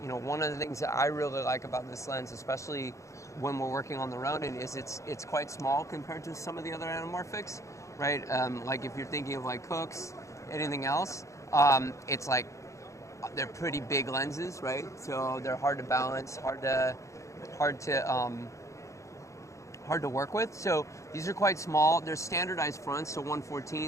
One of the things that I really like about this lens, especially when we're working on the Ronin, is it's quite small compared to some of the other anamorphics, right? Like if you're thinking of like Cooks, anything else, it's like they're pretty big lenses, right? So they're hard to balance, hard to work with. So these are quite small. They're standardized fronts, so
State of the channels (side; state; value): right; late; 0.15 ms